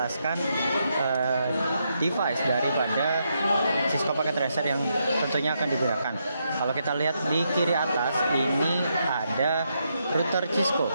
device daripada Cisco Packet Tracer yang tentunya akan digunakan. Kalau kita lihat di kiri atas ini ada router Cisco.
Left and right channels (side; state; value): both; inverted; correlation -0.80